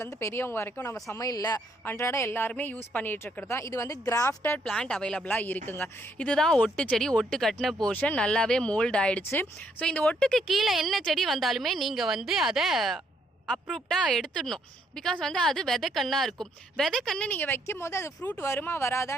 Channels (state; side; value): normal; both; correlation 0.71